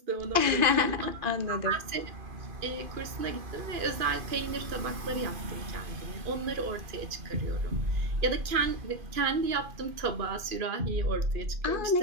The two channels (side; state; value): left; late; 2.5 ms